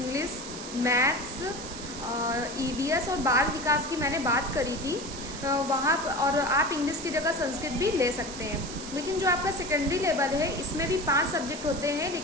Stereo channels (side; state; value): right; noise; hiss, 11 dB below the sound